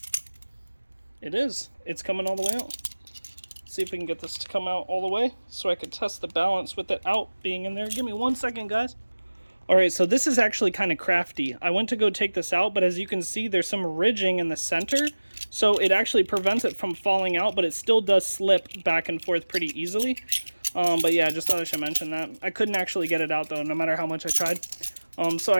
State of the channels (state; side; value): inverted; both; correlation -1.00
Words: It is. It's coming all the way out. Let's see if we can get this to come out all the way so I can test the balance with it out being in there. Give me 1 second, guys. All right, so this is actually kind of crafty. I went to go take this out, but as you can see, there's some ridging in the center. So it actually prevents it from falling out, but it still does slip back and forth pretty easily. But yeah, just thought I should mention that. I couldn't actually get it out, though, no matter how much I tried. So